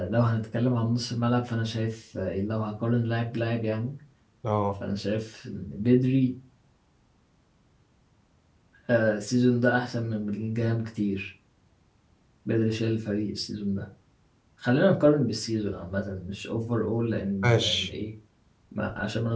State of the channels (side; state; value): both; identical; correlation 1.00